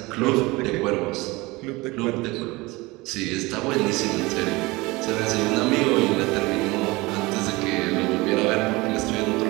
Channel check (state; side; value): quieter; left; 22.5 dB